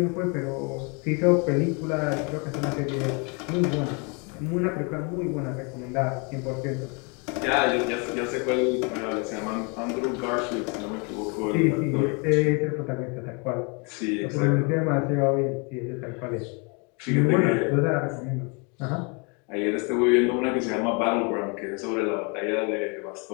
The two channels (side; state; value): right; quieter; 32.9 dB